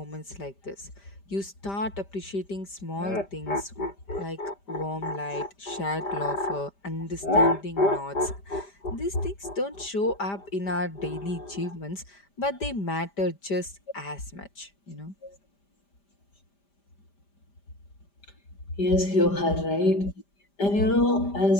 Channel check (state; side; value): late; right; 5.0 ms